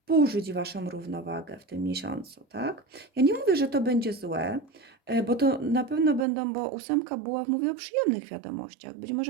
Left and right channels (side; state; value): left; drops out; at 6.2 s